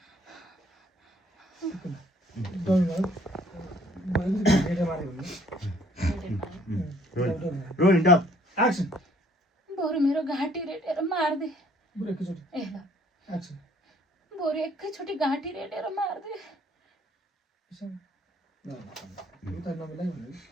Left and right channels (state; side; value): normal; both; correlation 0.61